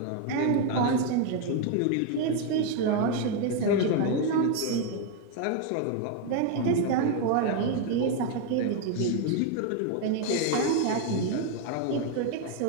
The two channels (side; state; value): both; different; correlation 0.01